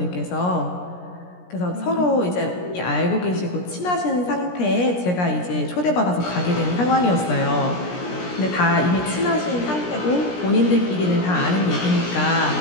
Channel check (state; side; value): late; right; 17 ms